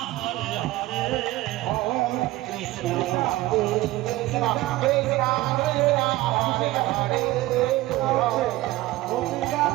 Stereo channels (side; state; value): left; quieter; 17.7 dB